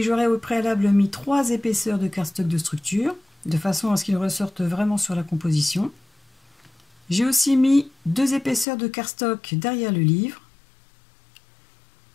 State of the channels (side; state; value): right; drops out; at 8.7 s